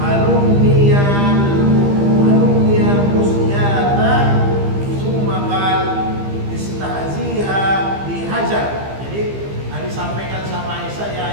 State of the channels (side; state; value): left; late; 15 ms